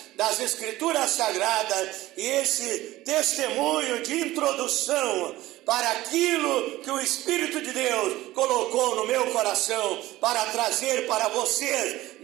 das Escrituras Sagradas e esse testemunho de introdução para aquilo que o Espírito de Deus colocou no meu coração para trazer para vocês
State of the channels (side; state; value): left; quieter; 16.9 dB